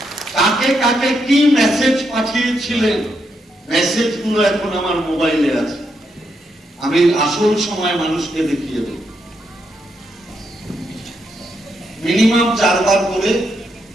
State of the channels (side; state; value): both; normal; correlation 0.80